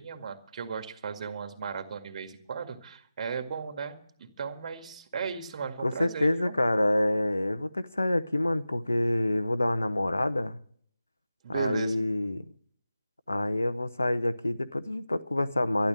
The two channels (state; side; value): inverted; both; correlation -0.94